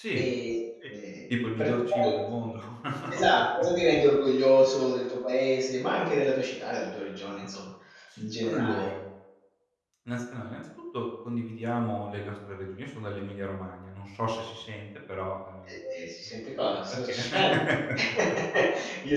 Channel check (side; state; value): both; identical; correlation 1.00